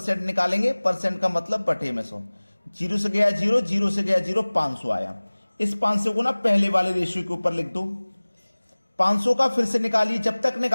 निकालेंगे, परसेंट का मतलब बटे में 100। 0 से गया 0, 0 से गया 0, 500 आया। इस 500 को ना पहले वाले रेशियो के ऊपर लिख दो। 500 का फिर से निकालिए, जब तक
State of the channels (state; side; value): inverted; both; correlation -1.00